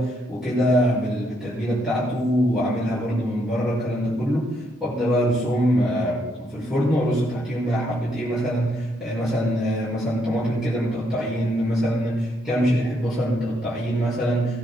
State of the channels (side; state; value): both; normal; correlation 0.75